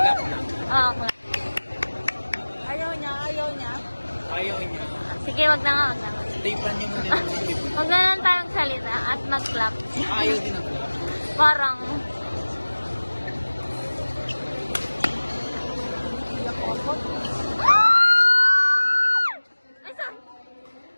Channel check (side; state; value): both; inverted; correlation -1.00